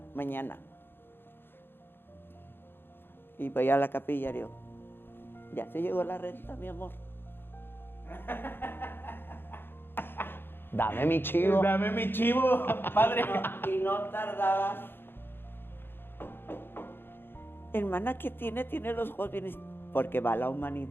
mañana. Y voy a la capilla y digo, ya se llegó la renta, mi amor. Dame mi chivo. Dame mi chivo, padre. Y no tardaba. Hermana, ¿qué tiene? Tiene los ojos bien, porque va la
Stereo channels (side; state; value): right; late; 0.10 ms